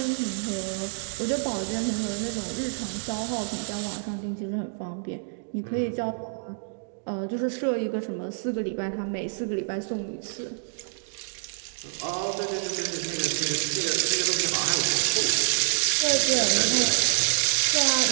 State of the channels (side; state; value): left; silent; digital silence